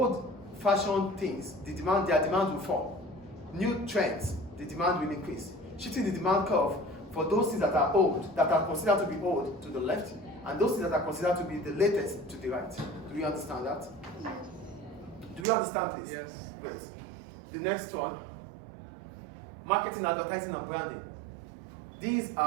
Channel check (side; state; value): left; drops out; at 15.5 s